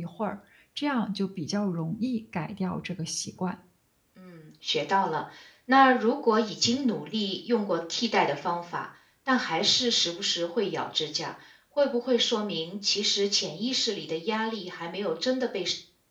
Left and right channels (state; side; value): identical; both; correlation 1.00